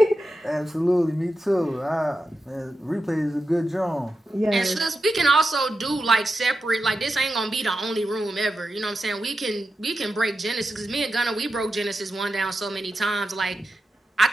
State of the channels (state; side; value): normal; both; correlation 0.90